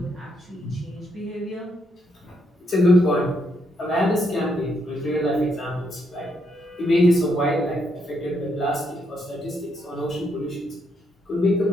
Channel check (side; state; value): both; normal; correlation 0.76